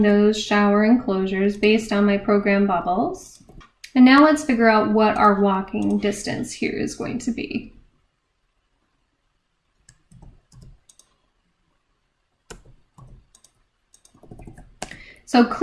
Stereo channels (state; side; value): identical; both; correlation 1.00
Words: those shower enclosures based on my program bubbles. And now let's figure out what our walking distance here is going to be. So